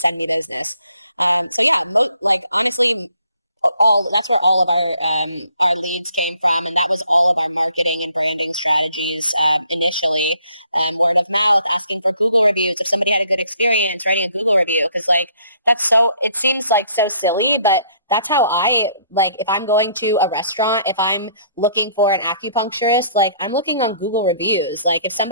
me business. Like honestly, all that's where all of our leads came from, and that was all of our marketing and branding strategies initially. Word of mouth, asking for Google reviews. If somebody had a good experience, writing a Google review, because like it seems like so silly, but that's how I like. If I'm going to a restaurant, if I'm looking for an acupuncturist, like I'm looking on Google reviews. Like if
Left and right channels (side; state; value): both; inverted; correlation -0.63